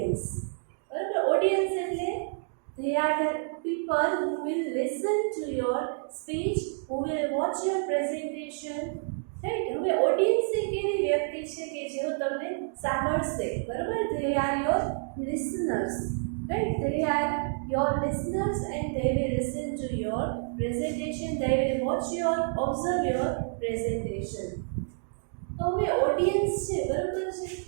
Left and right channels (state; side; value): silent; left; digital silence